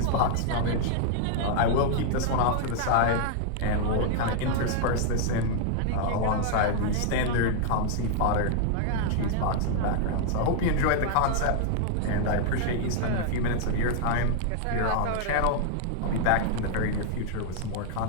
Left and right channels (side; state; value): both; different; correlation 0.00